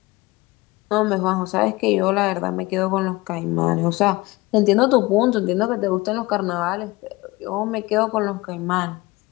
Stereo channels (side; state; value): right; quieter; 21.7 dB